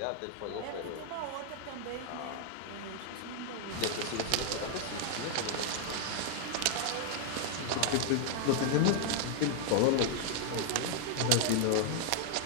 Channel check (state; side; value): different; both; correlation 0.00